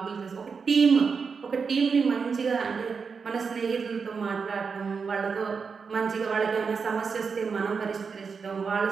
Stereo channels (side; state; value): left; quieter; 5.5 dB